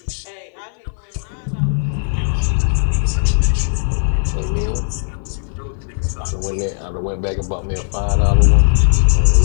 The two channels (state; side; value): silent; right; 60 dB below the other